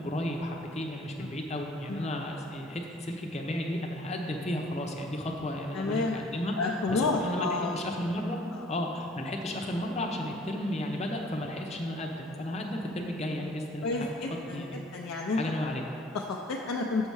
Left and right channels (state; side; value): normal; both; correlation 0.54